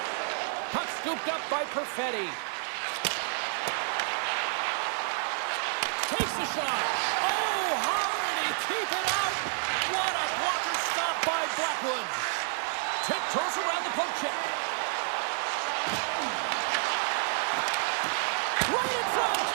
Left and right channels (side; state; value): left; silent; 58 dB below the other